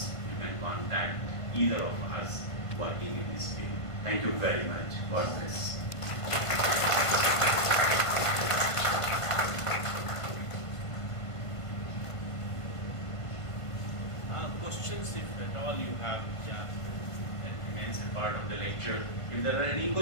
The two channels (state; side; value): late; right; 1.5 ms